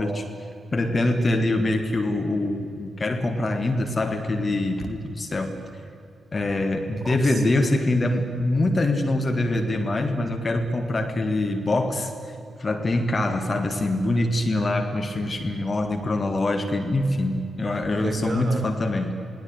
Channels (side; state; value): both; normal; correlation 0.89